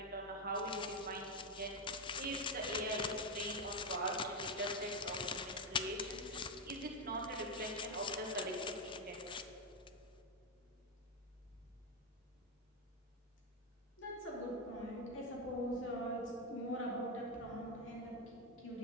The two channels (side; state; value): both; normal; correlation 0.06